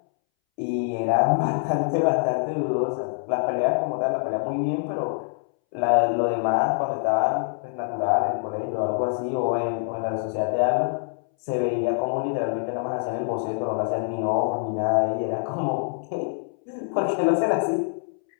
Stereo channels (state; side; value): silent; right; 62 dB below the other